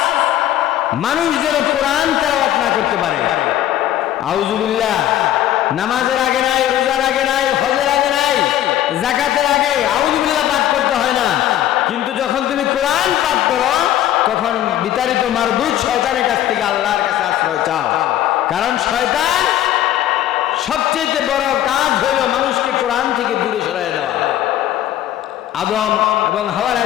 মানুষ যেন কোরআন তেলাওয়াত না করতে পারে। আউযু বিল্লাহ নামাজের আগে নাই, রোজার আগে নাই, হজের আগে নাই, যাকাতের আগে আউযু বিল্লাহ পাঠ করতে হয় না। কিন্তু যখন তুমি কোরআন পাঠ করো তখন বিতাড়িত মারদুদ শয়তানের কাছ থেকে আল্লাহর কাছে আশ্রয় চাও। কারণ শয়তান সবচেয়ে বড় কাজ হলো মানুষকে কোরআন থেকে দূরে সরিয়ে দেওয়া। আদম এবং হাওয়া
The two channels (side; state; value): right; quieter; 12.4 dB